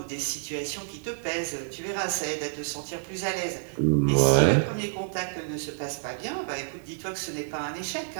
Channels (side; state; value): left; silent; digital silence